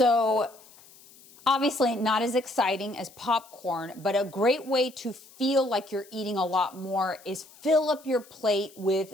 Obviously not as exciting as popcorn, but a great way to feel like you're eating a lot more is fill up your plate with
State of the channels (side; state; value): left; noise; hiss, 24 dB below the sound